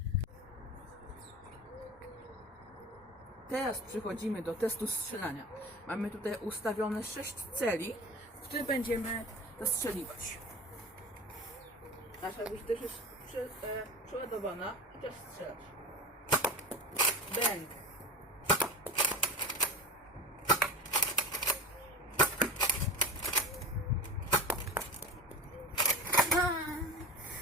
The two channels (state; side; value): normal; both; correlation 0.32